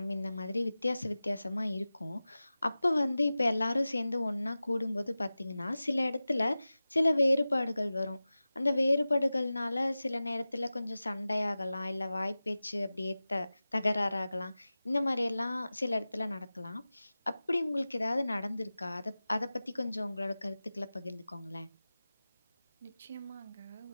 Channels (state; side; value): inverted; both; correlation -0.96